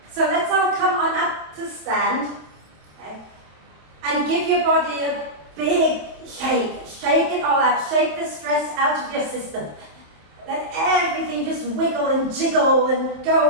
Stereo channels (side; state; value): left; late; 27 ms